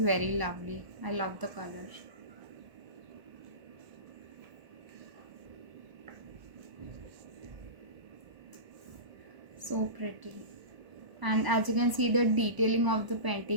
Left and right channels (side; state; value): left; late; 1.0 ms